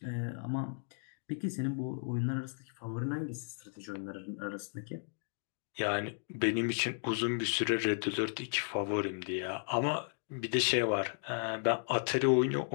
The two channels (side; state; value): right; silent; digital silence